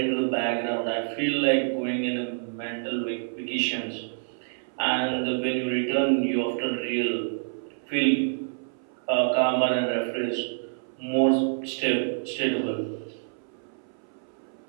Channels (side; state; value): left; silent; 60 dB below the other